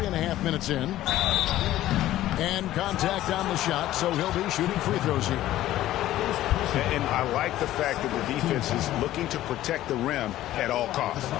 minutes in. And contact on the shot, so he'll be shooting free throws here. And I like the fact that the defense is looking to protect the rim at all costs.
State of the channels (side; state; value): right; quieter; 14.2 dB